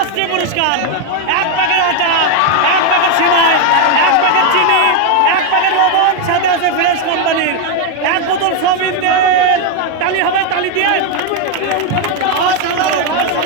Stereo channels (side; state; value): both; different; correlation 0.01